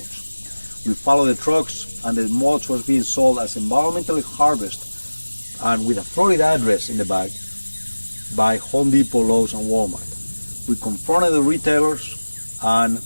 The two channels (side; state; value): both; inverted; correlation -1.00